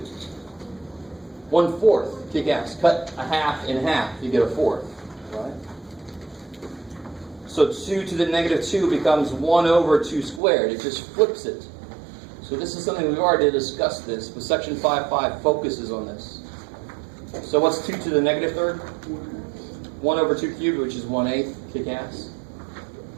1/4. Kick ass. Cut a half in half, you get a fourth. Right? So 2 to the negative 2 becomes 1 over 2 squared. It just flips it. So this is something we've already discussed this, but section 5.5 focuses on this. So what's 2 to the negative third? 1 over 2 cubed, which is 1/8. Kick ass.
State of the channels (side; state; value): left; drops out; at 10.4 s